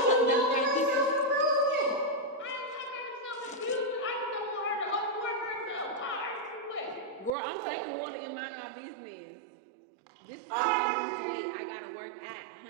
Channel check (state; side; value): drops out; left; at 7.3 s